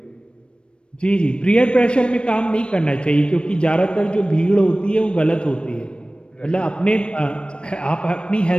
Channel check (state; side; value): late; right; 0.056 ms